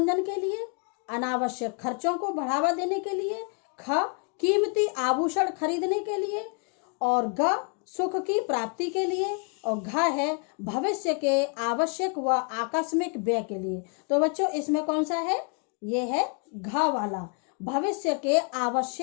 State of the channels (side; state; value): right; quieter; 37.8 dB